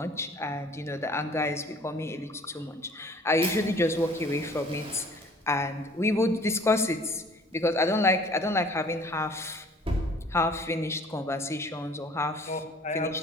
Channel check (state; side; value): normal; both; correlation 0.52